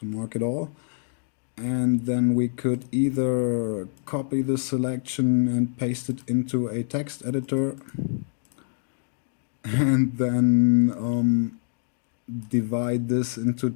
mark it all. And then we could either copy the selection and paste it into a text editor, and then divide this into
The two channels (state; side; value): silent; right; digital silence